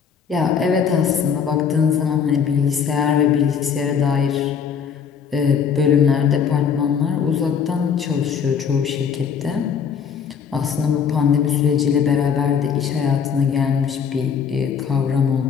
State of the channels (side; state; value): right; quieter; 7.0 dB